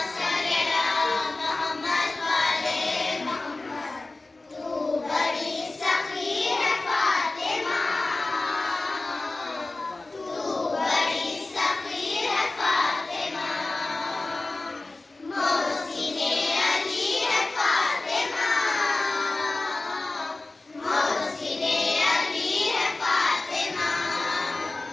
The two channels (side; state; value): right; quieter; 3.2 dB